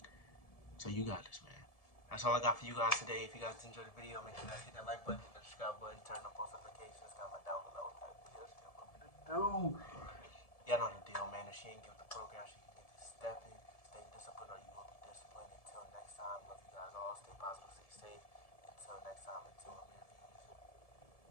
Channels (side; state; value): right; late; 1.7 ms